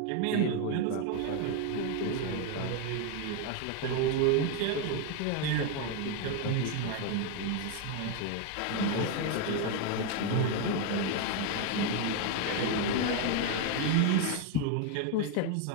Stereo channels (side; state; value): both; different; correlation 0.01